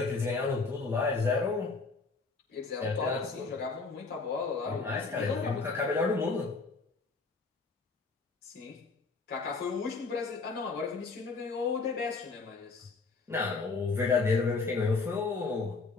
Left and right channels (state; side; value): quieter; right; 4.1 dB